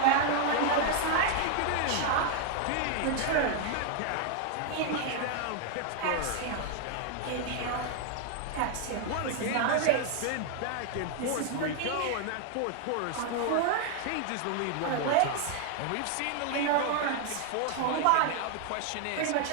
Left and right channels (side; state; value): both; different; correlation 0.00